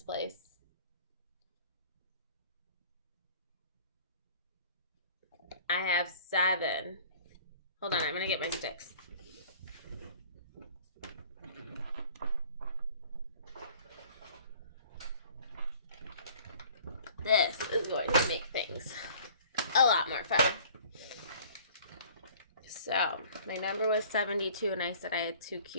place. I have 7. Hold on, I'm going to get my sticks. This is going to make things a lot more fun. So, my number was 72 and I said I had 2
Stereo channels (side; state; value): both; inverted; correlation -0.51